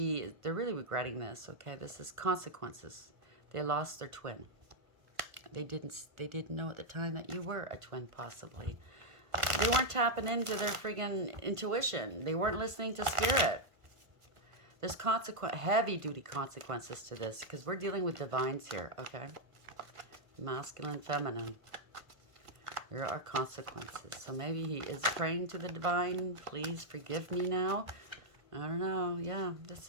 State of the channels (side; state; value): left; late; 1.5 ms